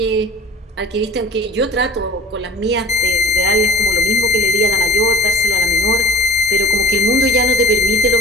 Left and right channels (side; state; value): both; normal; correlation 0.42